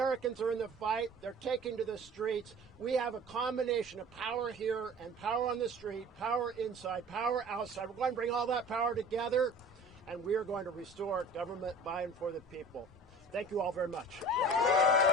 are in the fight. They're taking to the streets. We have a combination of power here and power on the street, power inside, power outside. We're going to bring all that power together, and we are going to restore government by and for the people. Thank you all very much.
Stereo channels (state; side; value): normal; both; correlation 0.42